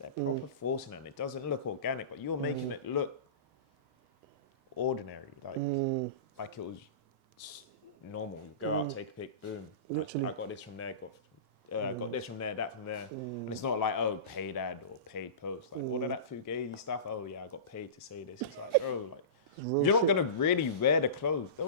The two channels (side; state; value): left; late; 1.6 ms